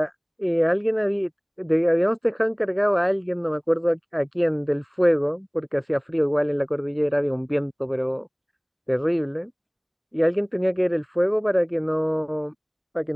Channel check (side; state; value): both; identical; correlation 1.00